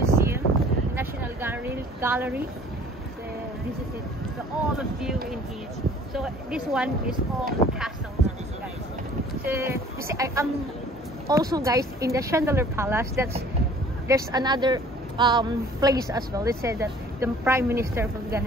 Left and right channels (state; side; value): normal; both; correlation 0.52